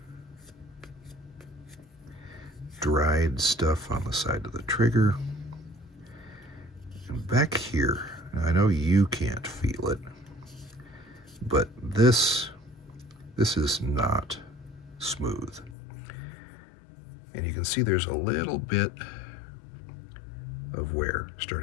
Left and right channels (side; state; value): right; drops out; at 15.8 s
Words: Dried stuff on the side of the trigger. And back here, I know you can't feel it, but this is not smooth. And you can see there's a little bit of wear